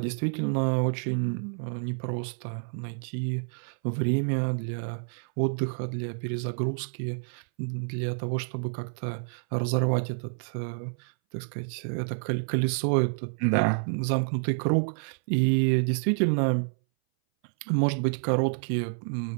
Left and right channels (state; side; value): silent; left; 59 dB below the other